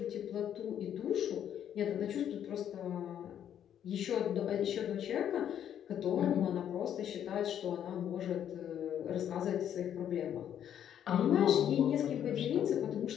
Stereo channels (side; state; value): right; quieter; 9.7 dB